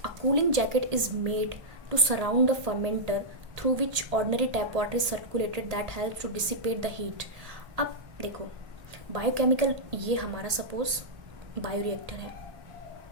A cooling jacket is made to surround the fermenter through which ordinary tap water is circulated that help to dissipate the heat. अब देखो, बायोकेमिकल, ये हमारा सपोज बायोरिएक्टर है।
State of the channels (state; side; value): late; left; 1.8 ms